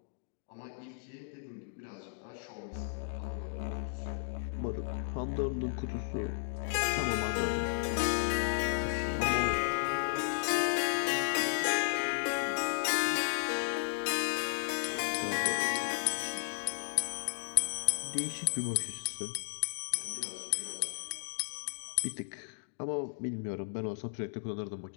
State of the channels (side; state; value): right; silent; digital silence